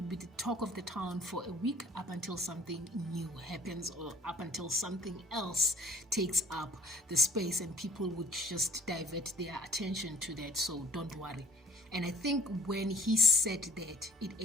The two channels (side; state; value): both; normal; correlation 0.52